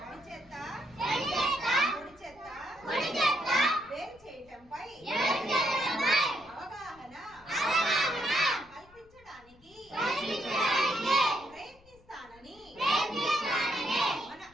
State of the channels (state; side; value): noise; left; rumble, 28 dB below the sound